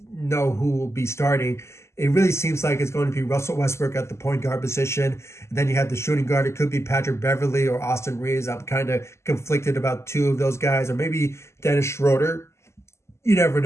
know who will be starting, it really seems like it's going to be Russell Westbrook at the point guard position. And then you have the shooting guard. It could be Patrick Beverley or Austin Reaves. I'm kind of conflicted about two of those guys, or maybe Dennis Schroder. You never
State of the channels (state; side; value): late; right; 0.13 ms